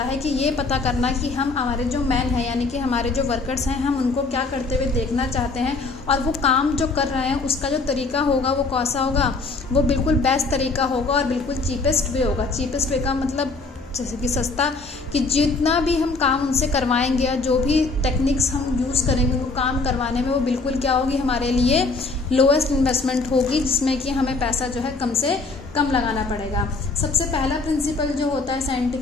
कि ये पता करना कि हम हमारे जो मैन हैं यानी कि हमारे जो वर्कर्स हैं, हम उनको क्या करते हुए देखना चाहते हैं और वो काम जो कर रहे हैं उसका जो तरीका होगा वो कैसा होगा, वो बिल्कुल बेस्ट तरीका होगा और बिल्कुल चीपेस्ट वे होगा। चीपेस्ट वे का मतलब जैसे कि सस्ता, कि जितना भी हम काम उनसे करवाएंगे या जो भी टेक्निक्स हम यूज़ करेंगे उनको काम करवाने में, वो बिल्कुल क्या होगी, हमारे लिए लोएस्ट इन्वेस्टमेंट होगी, जिसमें कि हमें पैसा जो है कम से कम लगाना पड़ेगा। सबसे पहला प्रिंसिपल जो होता है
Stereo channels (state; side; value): quieter; right; 3.8 dB